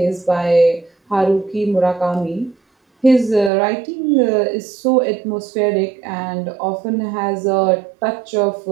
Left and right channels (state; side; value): drops out; left; at 3.5 s